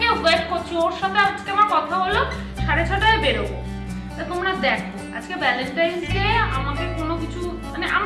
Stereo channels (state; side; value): identical; both; correlation 1.00